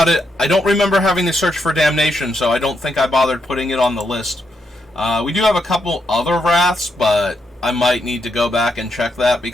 it, I don't remember having to search for Damnation, so I don't think I bothered putting it on the list. We do have a couple other Wraths, but I might need to go back and check that,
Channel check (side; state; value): both; normal; correlation 0.80